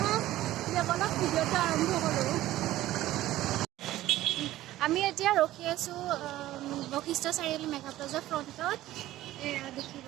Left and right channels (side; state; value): left; quieter; 15.1 dB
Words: বলক ভিডিঅ'টো আৰম্ভ কৰোঁ আমি এতিয়া ৰখি আছোঁ বশিষ্ঠ চাৰিআলি মেঘা প্লাজাৰ ফ্ৰণ্টত